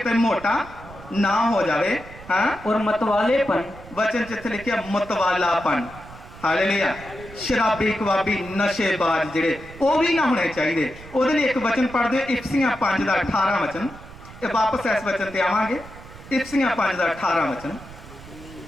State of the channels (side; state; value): right; noise; rumble, 17 dB below the sound